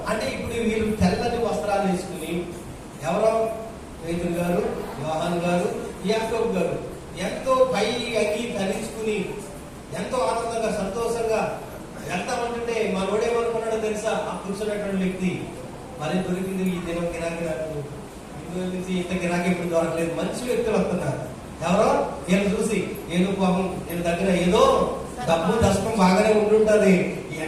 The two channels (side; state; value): both; identical; correlation 1.00